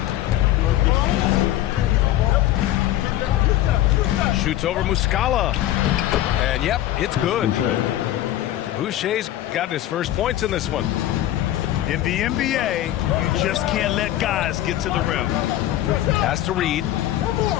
Shoots over Muscala. And yep, it's good. Boucher's got his first points in this one. In the NBA, you just can't let guys get to the rim. Pass to Reed.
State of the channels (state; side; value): quieter; right; 13.6 dB